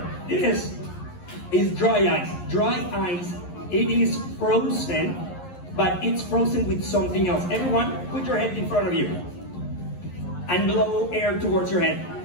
This is dry ice. Dry ice, it is frozen, but it's frozen with something else. Everyone, put your hand in front of you and blow air towards your head.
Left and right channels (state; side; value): late; right; 11 ms